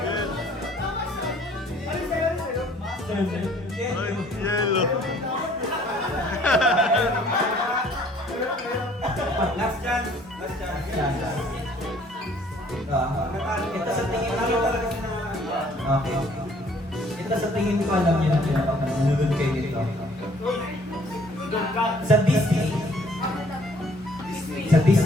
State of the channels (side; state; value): both; normal; correlation 0.58